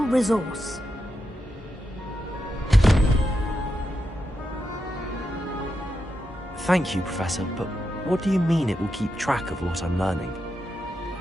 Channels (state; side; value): normal; both; correlation 0.86